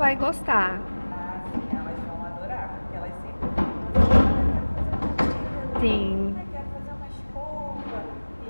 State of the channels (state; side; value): inverted; both; correlation -1.00